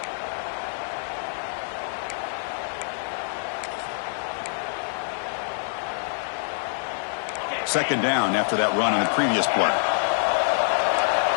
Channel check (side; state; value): right; silent; 61 dB below the other